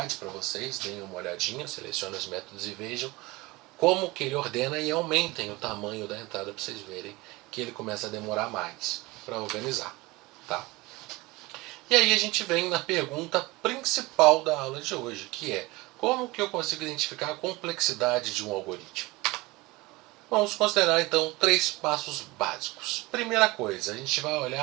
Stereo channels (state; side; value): quieter; left; 22.1 dB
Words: para vocês, deem uma olhadinha, selecionem os métodos e vejam como que ele ordena e aumentem o tamanho da entrada para vocês verem que ele começa a demorar mais para organizar. Tá? E aí a gente vem na pergunta principal da aula de hoje, que é: como que eu consigo identificar a complexidade de um algoritmo? Vamos considerar então 3 passos básicos. Primeira coisa, a gente vai